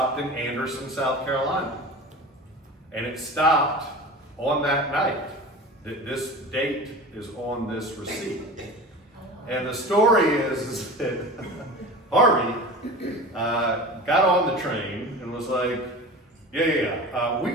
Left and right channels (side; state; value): both; normal; correlation 0.35